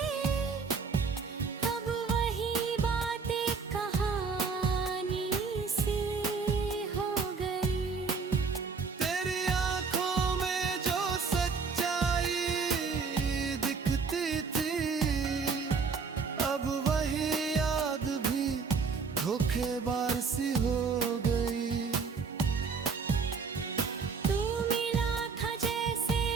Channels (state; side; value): quieter; left; 5.1 dB